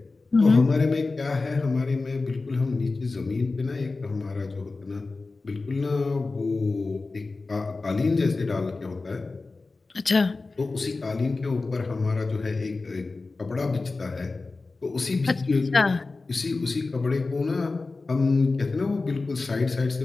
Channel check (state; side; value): quieter; right; 3.7 dB